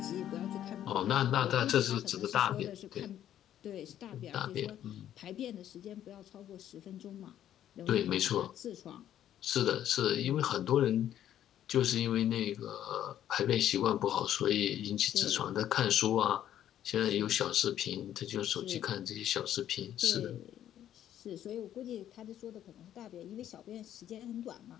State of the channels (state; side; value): quieter; right; 11.2 dB